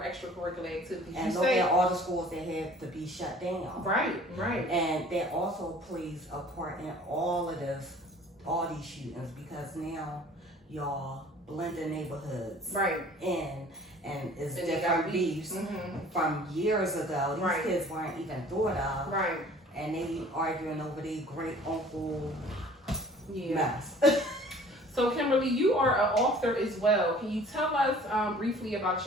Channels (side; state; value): both; normal; correlation 0.50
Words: extracurricular activities. And look at all the schools that have to be shut down. Right. And that also plays a part in all these shootings, because now y'all blend the neighborhoods in, and it's different beefs from years ago. These kids weren't even thought of. Right. And they arguing over their great uncle mess. So Kimberly, you are an author as well. Can you tell us briefly about